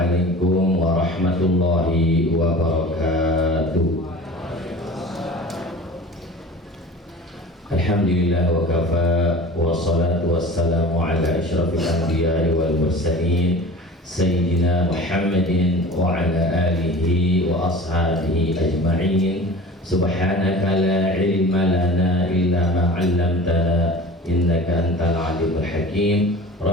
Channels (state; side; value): normal; both; correlation 0.39